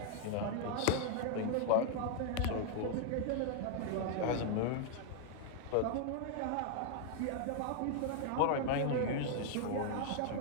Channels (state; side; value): different; both; correlation 0.00